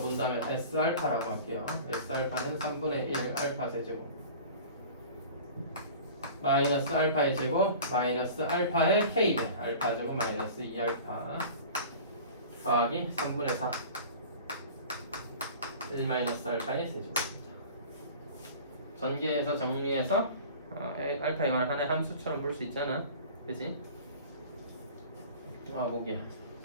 S알파라고 할게요. S알파는 3분의 1 알파 세제곱 마이너스 알파의 제곱 마이너스 알파의 k배 알파 제곱 마이너스 2알파 더하기 3분의 4 1-알파의 세제곱입니다. 전개해서 정리해서 알파에 관한 하나의 함수처럼 볼 수 있잖아. 그치? 보기야.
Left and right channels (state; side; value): inverted; both; correlation -0.40